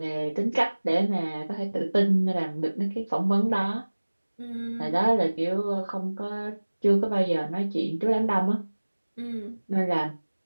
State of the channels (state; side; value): inverted; both; correlation -1.00